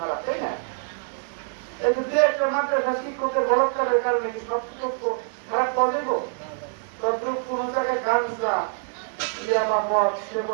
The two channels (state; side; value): silent; left; digital silence